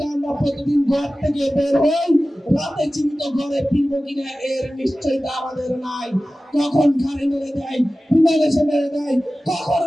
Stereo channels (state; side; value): normal; both; correlation 0.96